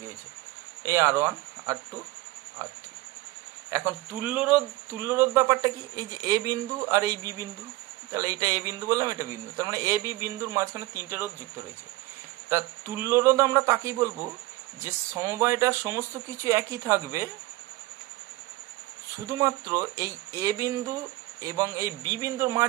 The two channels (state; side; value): quieter; left; 19.1 dB